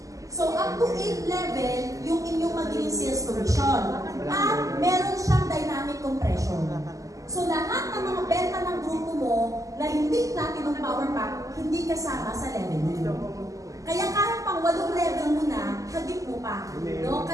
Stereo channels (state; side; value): late; left; 0.16 ms